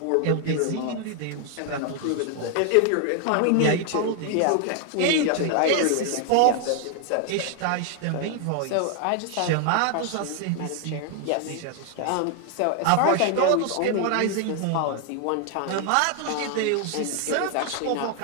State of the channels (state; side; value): different; both; correlation 0.00